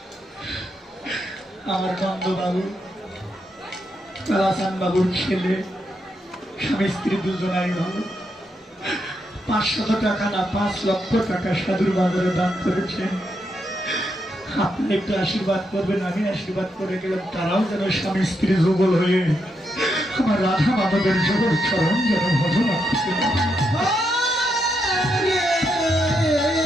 আমার বন্ধুবাবু রাসান বাবুর ছেলে স্বামী স্ত্রী দুজনাই ভালো, 500 টাকা না 5 লক্ষ টাকা সাধুর বাজারে দান করেছেন। আপনি একটু আশীর্বাদ করবেন, আমি আশীর্বাদ করে গেলাম তারাও যেন স্বামী স্ত্রী যুগল হয়ে আমার রাধা মাধবের জগৎ চরণ যেন ভজনা করতে পারে।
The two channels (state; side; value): normal; both; correlation 0.81